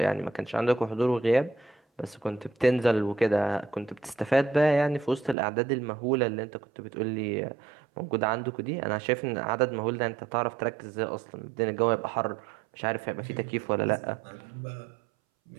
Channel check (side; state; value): left; drops out; at 5.4 s